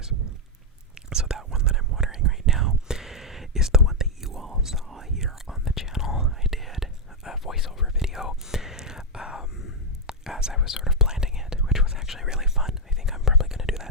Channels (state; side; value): normal; both; correlation -0.02